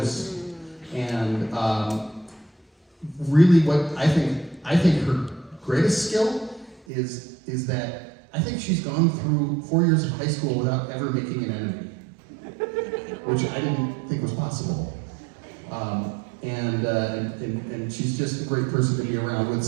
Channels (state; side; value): drops out; left; at 6.8 s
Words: and really what I think her greatest skill is that I think she's gone through 4 years of high school without ever making an enemy, which I didn't think was possible. And she's just a great person to be around with